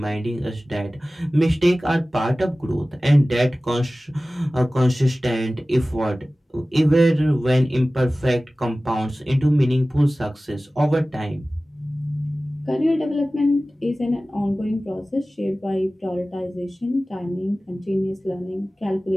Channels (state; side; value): normal; both; correlation 0.97